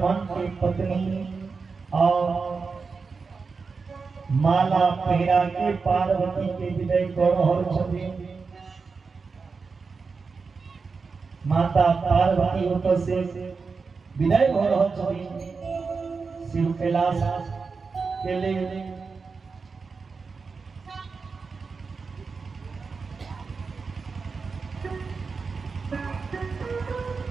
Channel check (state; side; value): quieter; left; 4.8 dB